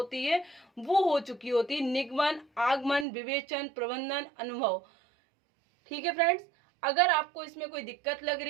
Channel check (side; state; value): left; drops out; at 3.1 s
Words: है, वो हो चुकी होती है। निगमन, आगमन, विवेचन, प्रबंधन, अनुभव। ठीक है फ्रेंड्स, अगर आपको इसमें कोई दिक्कत लग